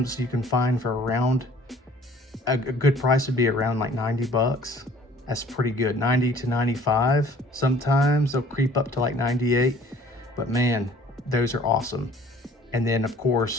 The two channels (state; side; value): normal; both; correlation 0.53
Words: you can find for around, a good price would be around like 90 bucks. That's pretty good, 90 to 95. Sometimes they'll creep up to like 98, but man, those are awesome. And then of